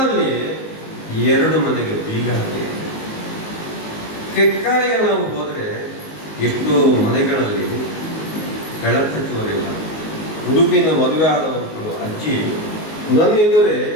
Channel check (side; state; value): right; late; 19 ms